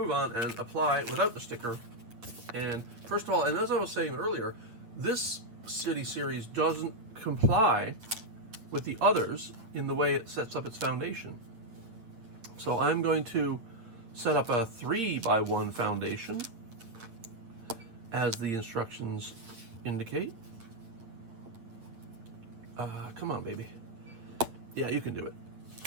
on and apply without the sticker. And first of all, and as I was saying earlier, this city series doesn't comply with the others in the way it sets up its foundation. So I'm going to set up a 3x1 foundation as the instructions indicate. Come on, baby. Yeah, you can do it.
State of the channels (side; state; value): left; late; 8.7 ms